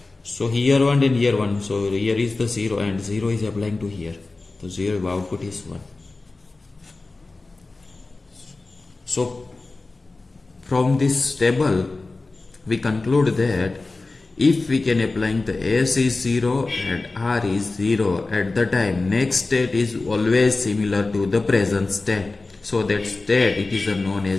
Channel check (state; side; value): quieter; right; 3.5 dB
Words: So here 1 and here 1. So here is the 0, and 0 is applying to here. So 0 output is 1. So from this table, we conclude that if we can apply the S is 0 and R is 0, at the time next state is always similar to the present state. So that state, it is known